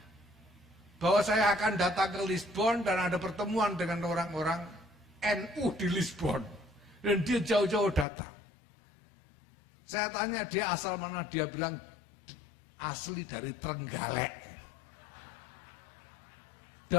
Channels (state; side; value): drops out; right; at 8.1 s